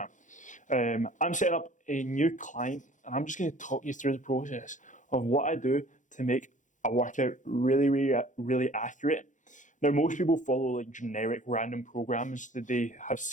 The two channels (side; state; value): right; late; 0.36 ms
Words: I'm setting up a new client and I'm just going to talk you through the process of what I do to make a workout really accurate. Now, most people follow like generic random programs that they have